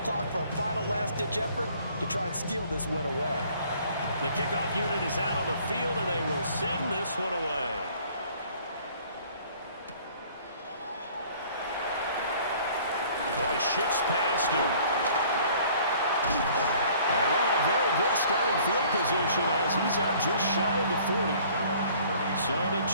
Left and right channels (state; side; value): inverted; both; correlation -0.55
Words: clock for a final last-ditch effort to try and steal this win away. The kickoff unit is out on the field, and they will send this one away. Oh, he shifts past him. And a very good starting field position as he's up just shy of the 40. So the